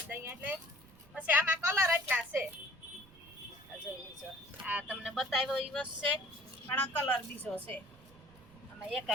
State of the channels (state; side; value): noise; right; rumble, 25 dB below the sound